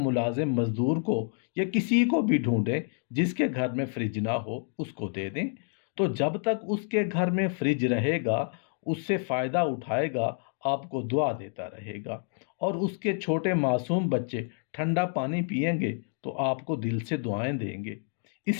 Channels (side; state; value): right; silent; 56 dB below the other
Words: مزدور کو یا کسی کو بھی ڈھونڈیں جس کے گھر میں فریج نہ ہو، اس کو دے دیں، تو جب تک اس کے گھر میں فریج رہے گا اس سے فائدہ اٹھائے گا، آپ کو دعا دیتا رہے گا، اور اس کے چھوٹے معصوم بچے ٹھنڈا پانی پئیں گے تو آپ کو دل سے دعائیں دیں گے۔